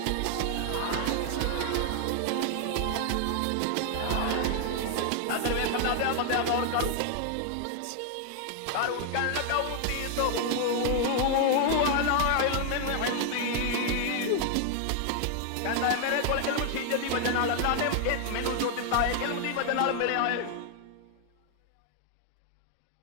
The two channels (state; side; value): different; both; correlation 0.00